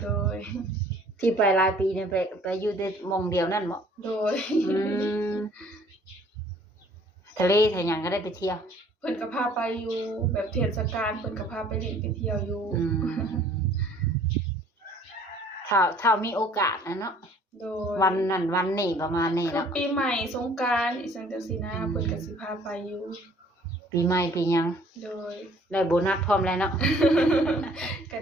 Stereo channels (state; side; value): normal; both; correlation 0.56